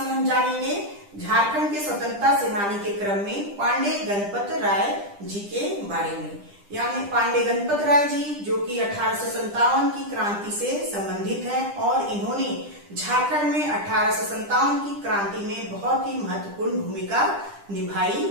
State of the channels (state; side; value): late; left; 10 ms